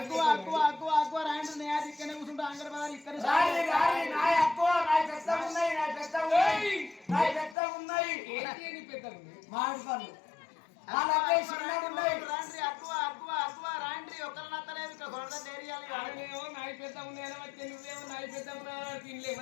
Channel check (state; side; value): drops out; right; at 7.6 s